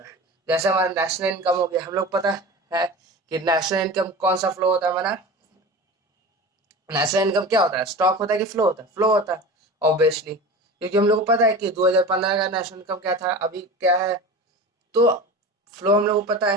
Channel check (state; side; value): normal; both; correlation 0.32